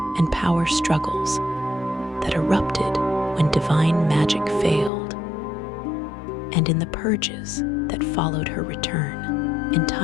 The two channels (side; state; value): right; drops out; at 4.9 s